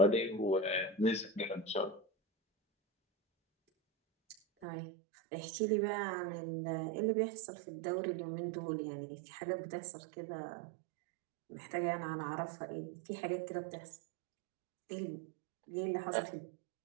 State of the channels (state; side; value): drops out; left; at 4.7 s